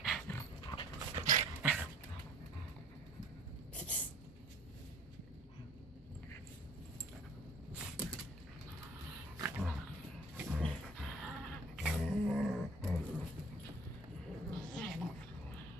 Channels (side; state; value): both; normal; correlation 0.50